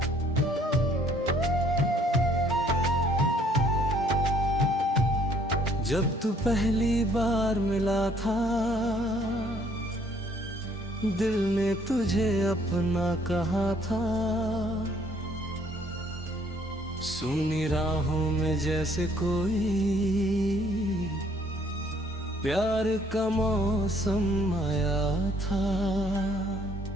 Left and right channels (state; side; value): normal; both; correlation 0.62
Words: जब तू पहली बार मिला था दिल ने तुझे अपना कहा था। सुनी राहों में जैसे कोई प्यार का मौसम आया था।